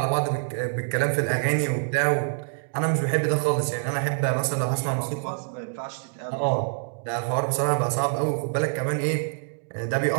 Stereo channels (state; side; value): silent; left; 61 dB below the other